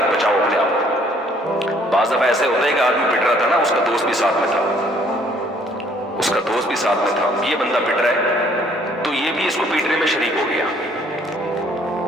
بچاؤ اپنے آپ کو۔ بعض دفعہ ایسے ہوتا ہے کہ آدمی پٹ رہا تھا نا، اس کا دوست بھی ساتھ میں تھا، اس کا دوست بھی ساتھ میں تھا، یہ بندہ پٹ رہا ہے تو یہ بھی اس کو پیٹنے میں شریک ہو گیا۔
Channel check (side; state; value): both; normal; correlation 0.62